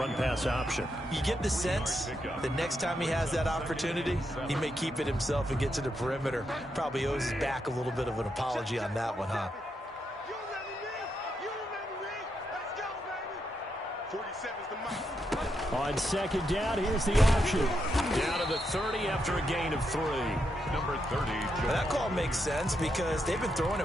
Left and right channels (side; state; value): both; normal; correlation 0.82